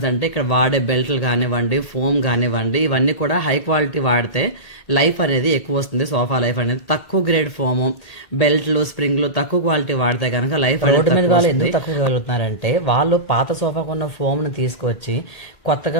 అంటే ఇక్కడ వాడే బెల్ట్లు కానివ్వండి, ఫోమ్ కానివ్వండి, ఇవన్నీ కూడా హై క్వాలిటీ వాడితే లైఫ్ అనేది ఎక్కువ వస్తుంది. సోఫా లైఫ్ అనేది తక్కువ గ్రేడ్ ఫోమ్, బెల్ట్లు, స్ప్రింగ్లు తక్కువ క్వాలిటీ వాడితే కనుక లైఫ్ రోడ్డు మీద వాళ్ళు ఎందుకు తక్కువ వెళ్తున్నారంటే వాళ్ళు పాత సోఫాకు ఉన్న ఫోమ్ ను తీసుకొచ్చి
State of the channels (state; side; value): late; right; 1.8 ms